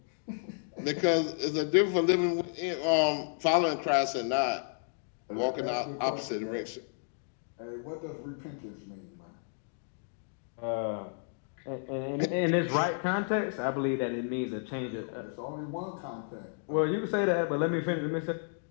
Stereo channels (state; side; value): silent; right; digital silence